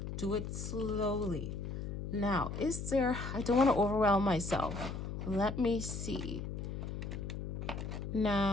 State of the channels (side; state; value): left; noise; hum, 5 dB below the sound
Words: Do it slowly. Now, I don't want to overwhelm myself. Let me see.